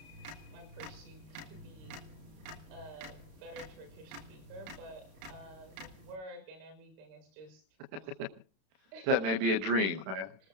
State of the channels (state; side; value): late; left; 32 ms